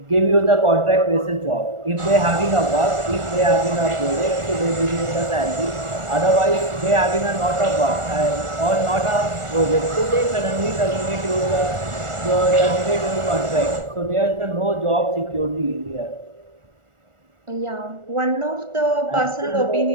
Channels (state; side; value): late; left; 1.4 ms